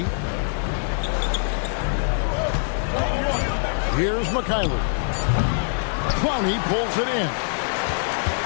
Here's Mikhailuk. Clowney pulls it in.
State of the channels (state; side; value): silent; right; 62 dB below the other